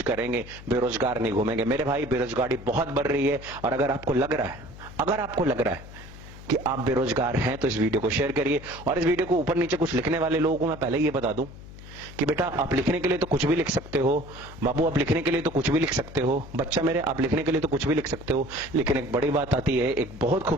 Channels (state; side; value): noise; left; hum, 16 dB below the sound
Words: करेंगे, बेरोजगार नहीं घूमेंगे। मेरे भाई, बेरोजगारी बहुत बढ़ रही है, और अगर आपको लग रहा है कि आप बेरोजगार हैं तो इस वीडियो को शेयर करिए। और इस वीडियो को ऊपर नीचे कुछ लिखने वाले लोगों को मैं पहले ये बता दूं कि बेटा, आप लिखने के लिए तो कुछ भी लिख सकते हो, बाबू आप लिखने के लिए तो कुछ भी लिख सकते हो, बच्चा मेरे आप लिखने के लिए तो कुछ भी लिख सकते हो, लेकिन एक बड़ी बात आती है, एक बहुत